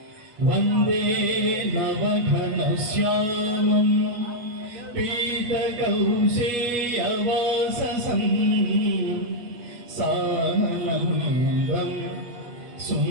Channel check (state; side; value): late; left; 8.3 ms